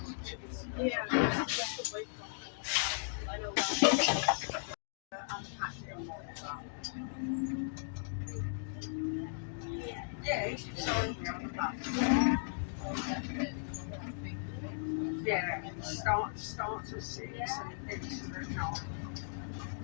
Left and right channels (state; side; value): silent; right; digital silence